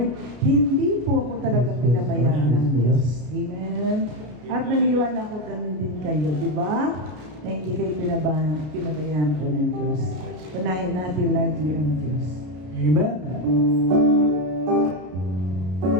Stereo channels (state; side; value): late; left; 33 ms